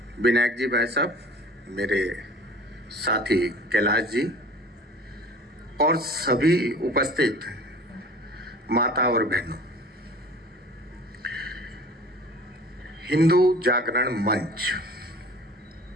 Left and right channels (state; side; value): normal; both; correlation 0.44